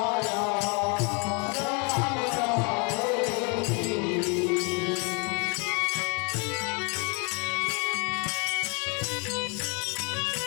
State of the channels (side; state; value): right; quieter; 33.3 dB